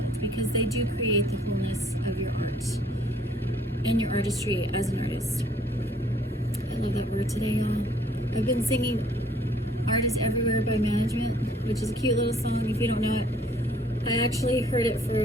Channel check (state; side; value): normal; both; correlation 0.59